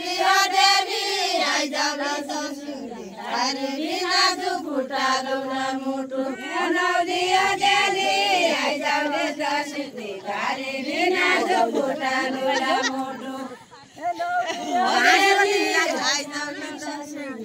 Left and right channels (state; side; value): identical; both; correlation 1.00